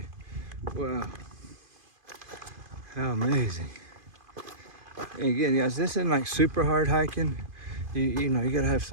Wow. How amazing. And again, guys, this isn't like super hard hiking. You know, you gotta have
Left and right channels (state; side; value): late; left; 2.5 ms